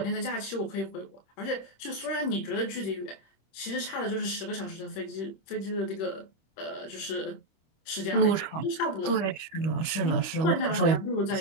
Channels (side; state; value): right; late; 26 ms